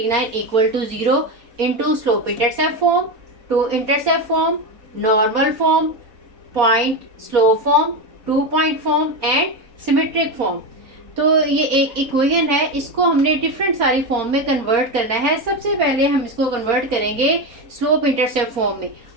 equal to 0 into slope intercept form, two intercept form, normal form, point slope form, 2 point form and symmetric form. तो ये एक equation है, इसको हमने डिफरेंट सारी फॉर्म में कन्वर्ट करना है। सबसे पहले हम इसको कन्वर्ट करेंगे स्लोप इंटरसेप्ट फॉर्म में।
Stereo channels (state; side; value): late; left; 3.9 ms